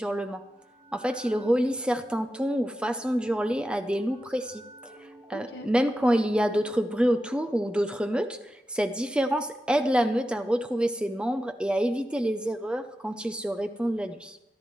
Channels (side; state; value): both; normal; correlation 0.91